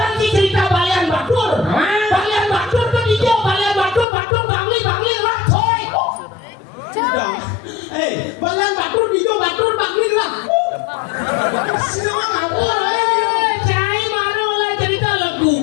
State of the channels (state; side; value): drops out; right; at 4.0 s